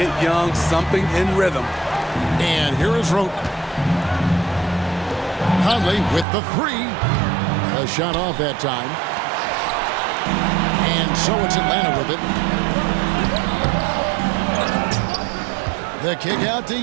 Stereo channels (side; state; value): left; drops out; at 6.2 s